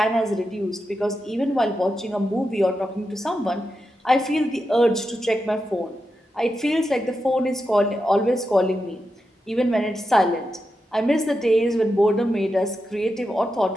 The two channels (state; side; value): normal; both; correlation 0.88